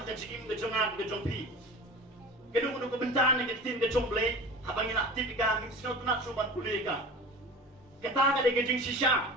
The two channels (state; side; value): normal; both; correlation 0.36